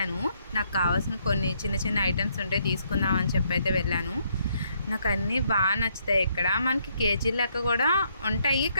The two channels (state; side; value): inverted; both; correlation -0.72